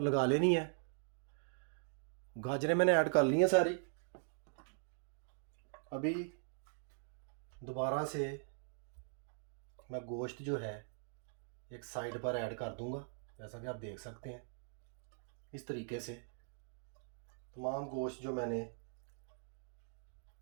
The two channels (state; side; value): silent; left; digital silence